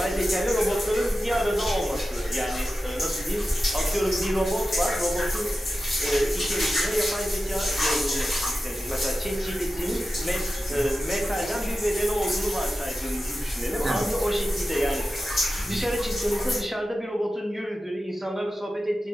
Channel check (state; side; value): normal; both; correlation 0.92